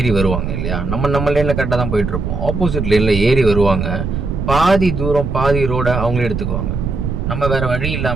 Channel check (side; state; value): right; noise; rumble, 3 dB below the sound